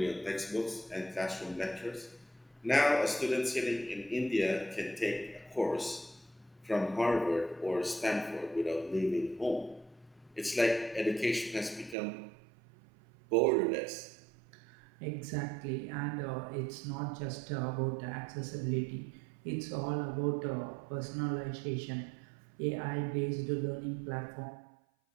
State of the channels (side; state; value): left; drops out; at 12.0 s